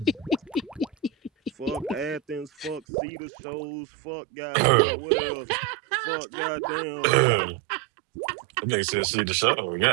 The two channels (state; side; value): drops out; left; at 2.8 s